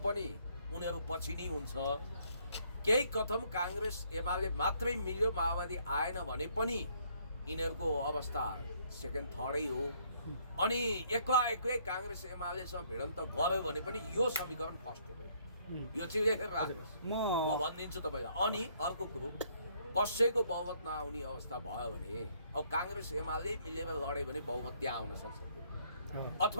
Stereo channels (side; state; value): both; inverted; correlation -0.66